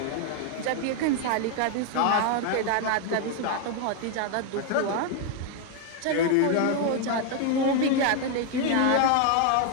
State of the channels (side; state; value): both; different; correlation 0.01